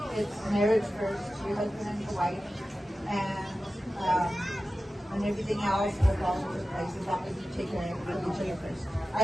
it's marriage first, your husband and your wife, and everything else will fall into place as long as you take care of each other first.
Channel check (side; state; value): both; normal; correlation 0.94